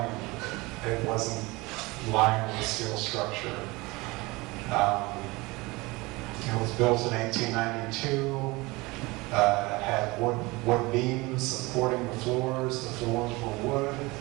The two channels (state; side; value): quieter; left; 23.1 dB